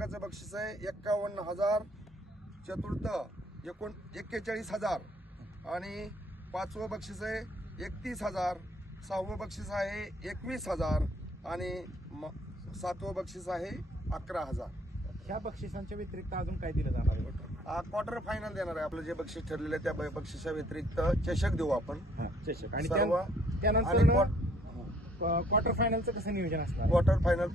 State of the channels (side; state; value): both; normal; correlation 0.62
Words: बक्षीस आहे 51,000. चतुर्थ 41,000 आणि पाचवं बक्षीस आहे 31,000. सहावं बक्षीस आहे 21,000 आणि सातवं बक्षीस आहे 11,000. ह्या बक्षिसांच्या व्यतिरिक्त अजून काय दिलं जाणार आहे? क्वार्टर फायनल देणार आहे. आपलं जे बक्षीस ठरलेलं आहे त्या बक्षिसा व्यतिरिक्त चषक देऊ आपण. चषक. आणि सर्व त्यानंतर क्वार्टर फायनलचं कसं नियोजन असणार? क्वार्टर फायनल